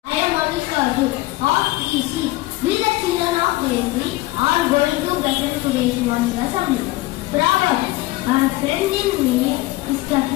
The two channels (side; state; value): right; quieter; 18.9 dB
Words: I am Alisha of EC. We the children of EC are going to present today's morning assembly. Proverb: a friend in need is the